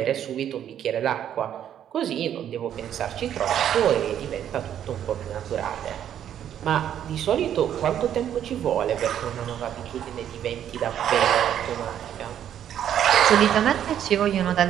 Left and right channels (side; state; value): left; quieter; 10.1 dB